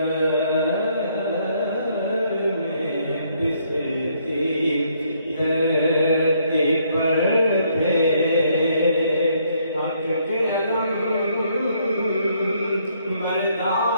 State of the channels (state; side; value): inverted; both; correlation -0.69